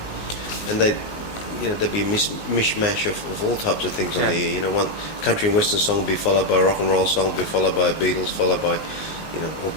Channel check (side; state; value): right; late; 19 ms